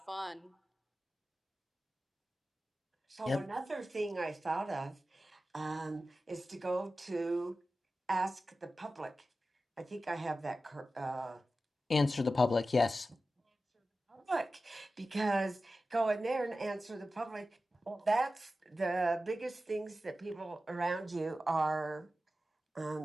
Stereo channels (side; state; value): both; normal; correlation 0.94